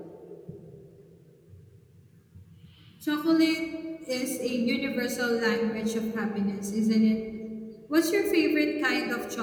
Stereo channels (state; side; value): identical; both; correlation 1.00